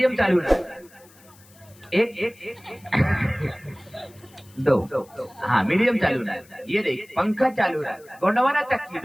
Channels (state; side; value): noise; left; hiss, 27 dB below the sound